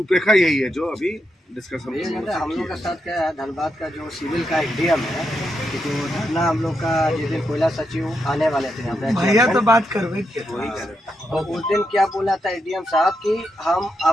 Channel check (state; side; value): normal; both; correlation 0.83